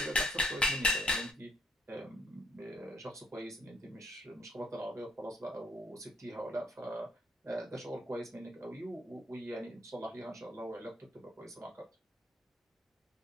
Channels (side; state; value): both; normal; correlation 0.68